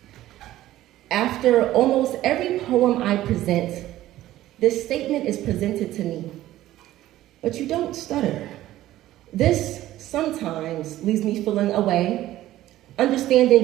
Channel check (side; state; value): left; quieter; 14.6 dB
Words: After almost every poem I present, this statement is presented to me. But you don't stutter. This sometimes leaves me feeling away, understanding